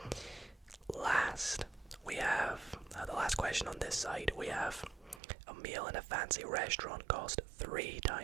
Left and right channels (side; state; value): left; drops out; at 5.2 s